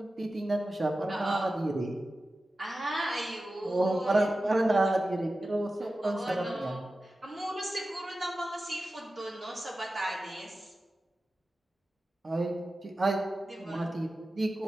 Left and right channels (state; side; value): normal; both; correlation 0.94